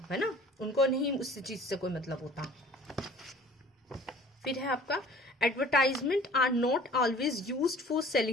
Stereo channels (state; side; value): normal; both; correlation 0.49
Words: है ना, उनको नहीं उस चीज से कोई मतलब होता। फिर है आपका advertisement are not always used for